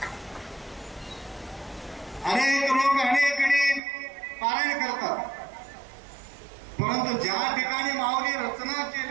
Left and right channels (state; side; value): drops out; left; at 3.8 s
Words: अनेक लोक अनेक पारायण करतात, परंतु ज्या ठिकाणी माऊली रचना